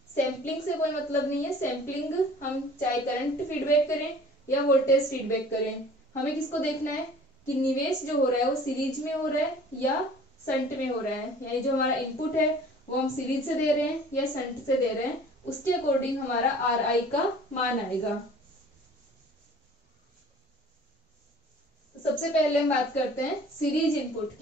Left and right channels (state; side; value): normal; both; correlation 0.48